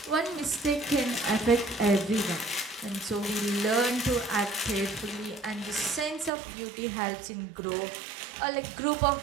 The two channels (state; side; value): drops out; left; at 6.3 s